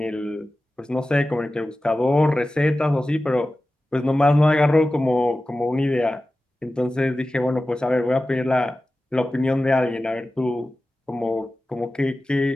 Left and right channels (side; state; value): both; normal; correlation 0.95